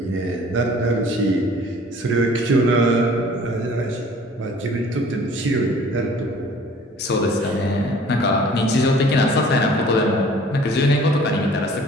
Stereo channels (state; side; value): normal; both; correlation 0.51